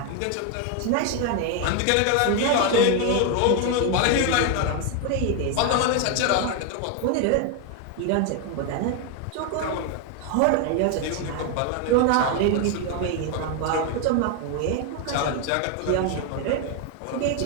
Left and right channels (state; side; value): different; both; correlation 0.01